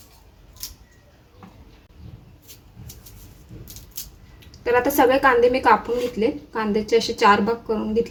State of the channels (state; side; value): identical; both; correlation 1.00